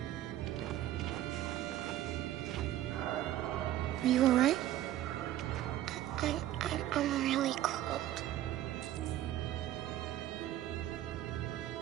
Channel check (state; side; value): quieter; left; 13.2 dB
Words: Are you all right? I'm really cold.